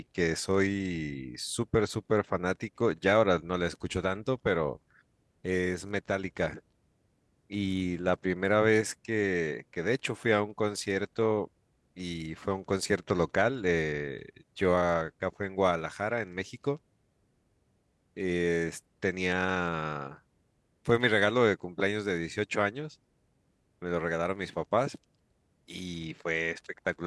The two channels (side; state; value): both; identical; correlation 1.00